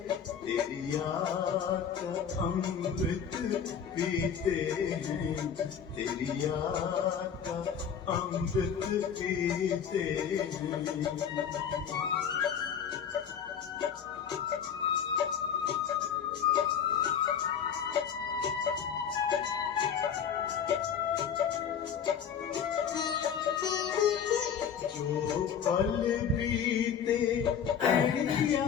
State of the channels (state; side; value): quieter; right; 7.8 dB